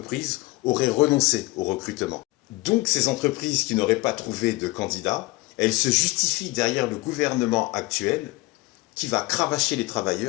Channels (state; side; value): quieter; right; 21.6 dB